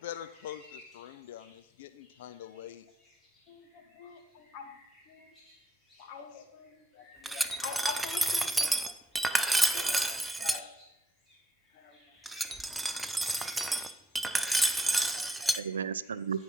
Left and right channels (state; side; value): normal; both; correlation 0.77